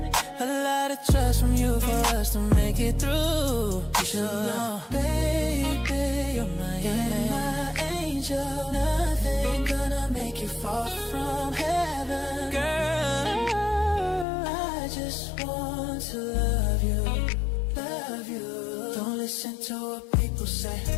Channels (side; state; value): right; drops out; at 14.2 s